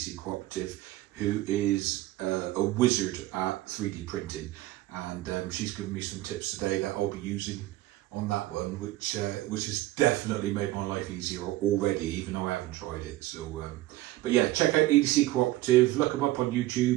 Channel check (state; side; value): quieter; left; 16.7 dB